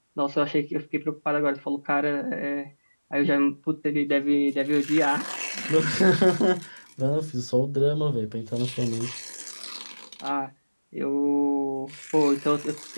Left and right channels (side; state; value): both; inverted; correlation -1.00